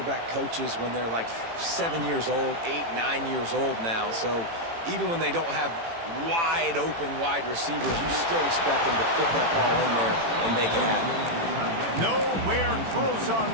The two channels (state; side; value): late; left; 18 ms